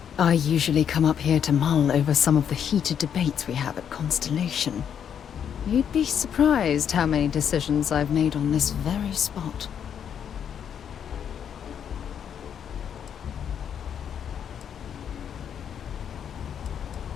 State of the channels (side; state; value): right; quieter; 8.4 dB